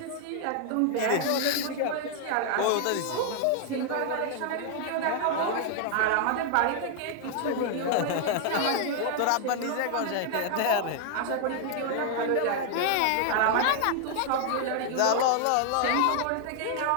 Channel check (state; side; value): different; both; correlation 0.00